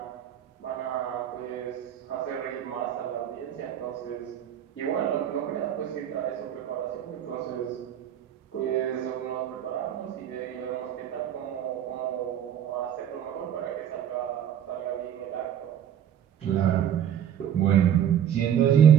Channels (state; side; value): quieter; left; 9.7 dB